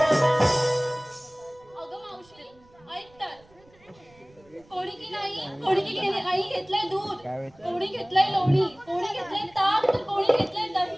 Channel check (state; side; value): noise; right; rumble, 29 dB below the sound